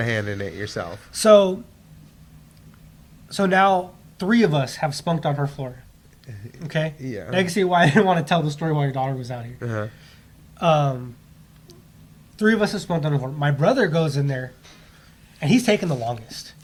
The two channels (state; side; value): identical; both; correlation 1.00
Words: hand in it yourself. So now 3 of us have spunked on her floor. Okay. Yeah. Now you can see why I didn't want to tell the story while your daughter was out here. 3 of us have spunked on her floor. My brother goes in there, and he's taking the longest.